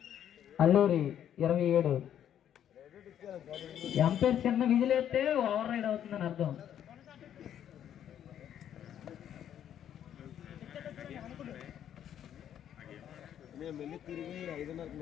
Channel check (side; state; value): right; quieter; 10.0 dB